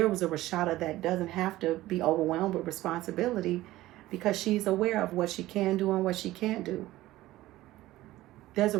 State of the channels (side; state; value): left; quieter; 16.5 dB